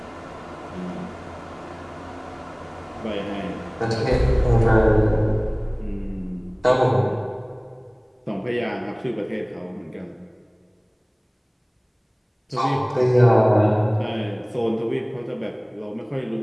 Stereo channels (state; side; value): identical; both; correlation 1.00